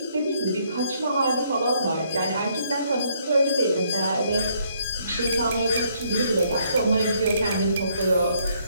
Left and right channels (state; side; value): inverted; both; correlation -0.69